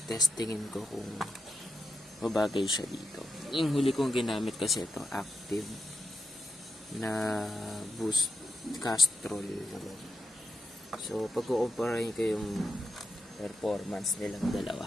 testingin ko kung mabagay siya dito. Yung huli kong ginamit kasi ito, active na boost castrol. So, pag-kukumparahin ko yung performance nilang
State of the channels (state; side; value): normal; both; correlation 0.85